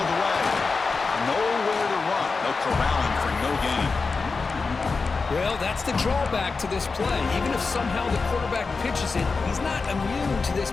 the way. Nowhere to run. No corralling for no gain. Well, that's the drawback to this play. Even if somehow the quarterback pitches it, he's not immune to this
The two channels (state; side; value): quieter; right; 4.4 dB